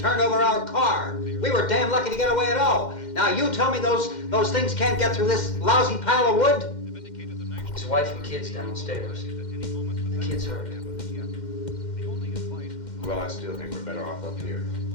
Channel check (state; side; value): late; right; 2.1 ms